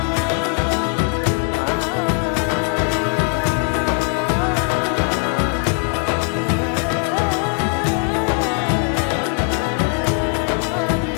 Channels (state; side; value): quieter; right; 33.9 dB